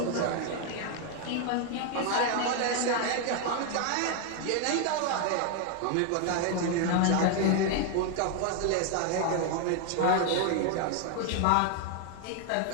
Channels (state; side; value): different; both; correlation 0.01